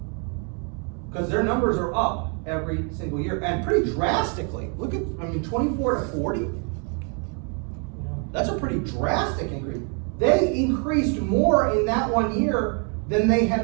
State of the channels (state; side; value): quieter; left; 38.6 dB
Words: Because their numbers are up every single year, and pretty drastically. Look at, 24 to 40? That's a pretty drastic increase. They increased more in that 1 year than they